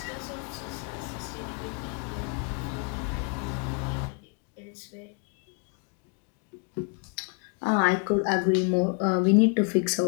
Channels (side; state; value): right; quieter; 38.6 dB